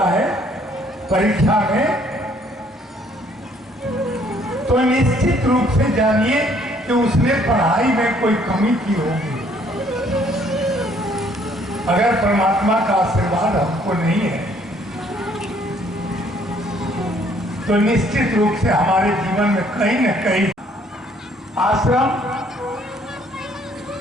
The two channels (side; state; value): both; normal; correlation 0.63